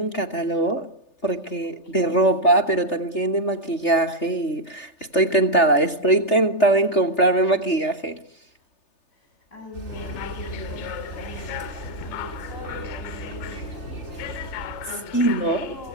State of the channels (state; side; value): late; right; 3.3 ms